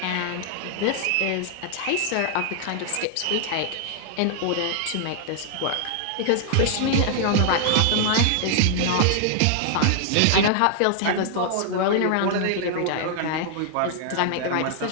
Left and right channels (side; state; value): both; different; correlation 0.00